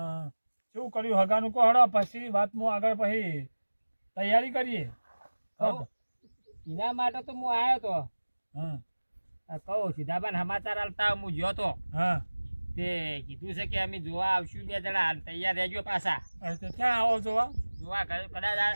શું કર્યું હગાનું કહો હડો પછી વાતમાં આગળ પછી તૈયારી કરીએ હઉ. એના માટે તો હું આવ્યો તો હા કહું સીધાબાન સમાચાર આલતા હું ગયો તો હા તે કીધું છે કે અમે જોવા આવશું 2 જણા તૈયાર રહેજો પાછા તો ક્યાં આવો જોવા? જોવા કદાચ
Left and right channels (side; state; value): both; inverted; correlation -1.00